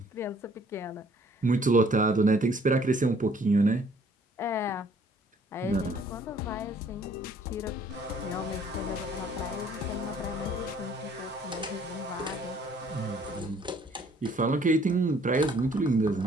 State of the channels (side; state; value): both; normal; correlation 0.59